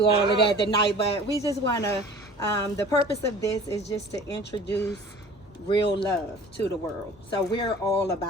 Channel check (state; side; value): normal; both; correlation 0.45